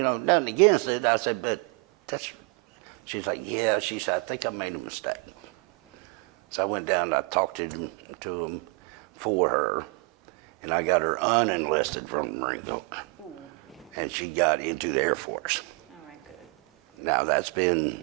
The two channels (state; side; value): quieter; left; 28.6 dB